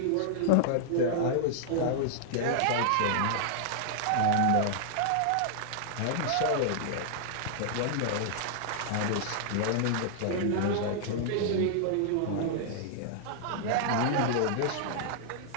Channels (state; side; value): different; both; correlation -0.01